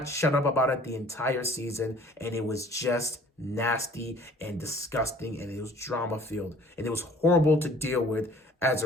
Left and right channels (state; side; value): normal; both; correlation 0.52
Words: shut up about it the entire season, and it was just nasty and disgusting, and it was drama-filled, and it was horrible to deal with as